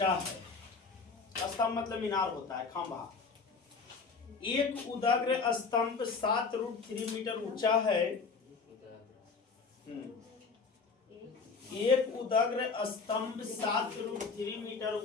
है। स्तंभ मतलब मीनार होता है, खंभा। एक उदग्र स्तंभ 7√3 मीटर ऊंचा है। एक उदग्र स्तंभ 7√3 मीटर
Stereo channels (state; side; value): quieter; right; 4.8 dB